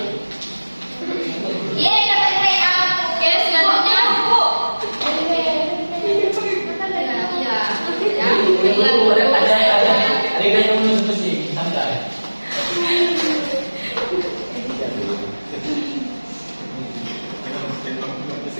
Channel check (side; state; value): both; inverted; correlation -1.00